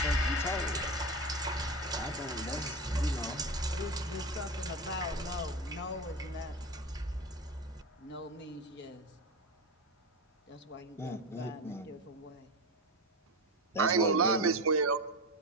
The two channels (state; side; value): normal; both; correlation 0.21